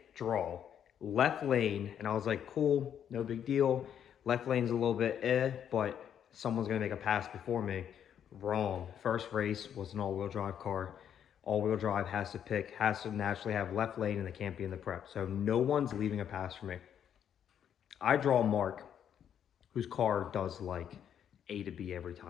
draw, left lane, and I was like, cool, no big deal. Left lane's a little bit but someone's gonna make a pass before me. Wrong. First race was an all-wheel drive car. All-wheel drive has to naturally have left lane, and they can't be in the prep. So no one's leaving a pass for me. I draw Mark, whose car does like A to B every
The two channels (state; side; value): quieter; right; 9.1 dB